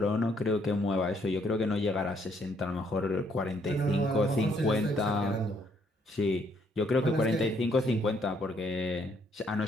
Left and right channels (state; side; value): normal; both; correlation 0.69